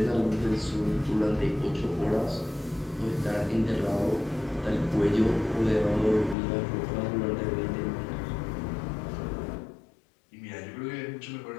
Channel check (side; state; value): right; drops out; at 6.4 s